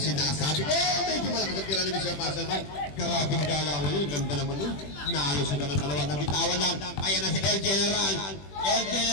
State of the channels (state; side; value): late; right; 21 ms